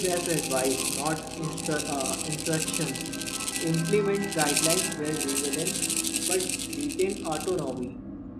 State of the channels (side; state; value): both; identical; correlation 1.00